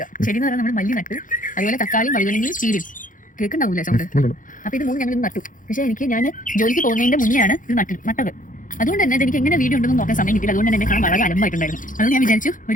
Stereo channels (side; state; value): right; late; 0.38 ms